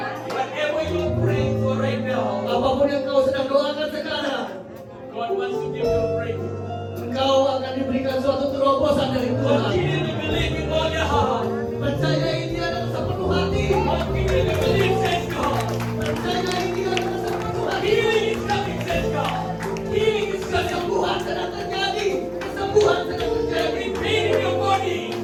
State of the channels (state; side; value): identical; both; correlation 1.00